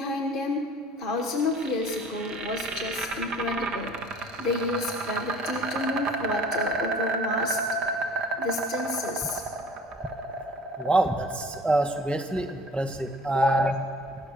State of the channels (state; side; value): normal; both; correlation 0.49